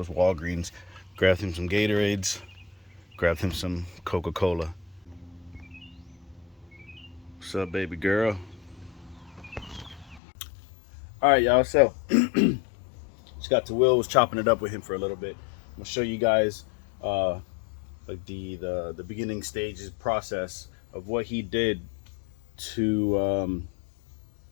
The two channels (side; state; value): right; drops out; at 10.2 s